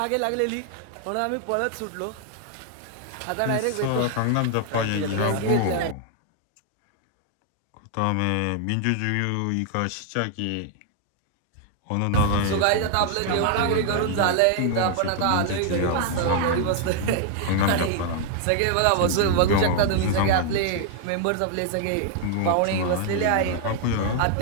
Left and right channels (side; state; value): both; different; correlation 0.00